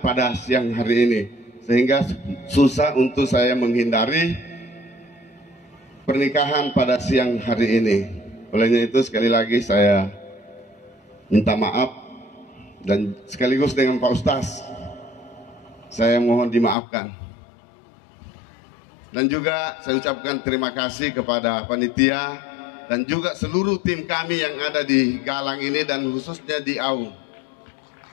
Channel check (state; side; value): drops out; right; at 16.8 s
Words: pada siang hari ini, sehingga susah untuk saya menghindari pernikahan pada siang hari ini. Olehnya itu sekali lagi saya minta maaf, dan sekaligus dengan Pak Ustaz saya mohon dimaafkan. Dan juga saya ucapkan terima kasih kepada panitia dan juga seluruh tim kami yang ada di Galang ini, dan khususnya di Aung,